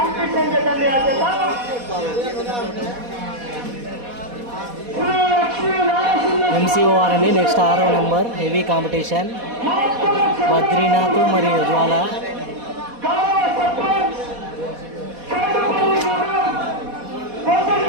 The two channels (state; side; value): late; left; 4.1 ms